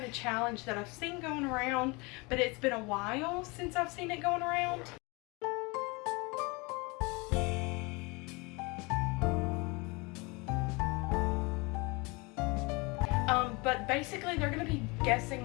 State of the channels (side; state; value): right; quieter; 27.1 dB